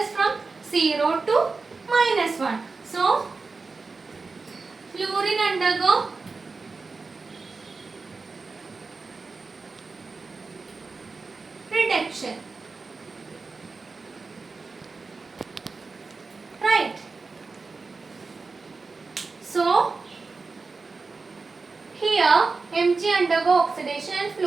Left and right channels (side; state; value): left; quieter; 4.2 dB